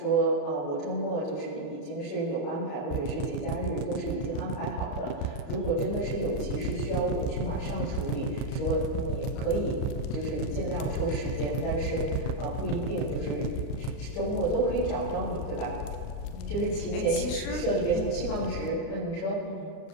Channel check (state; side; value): late; right; 34 ms